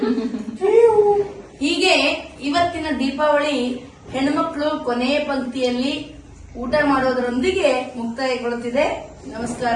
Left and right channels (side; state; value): both; identical; correlation 1.00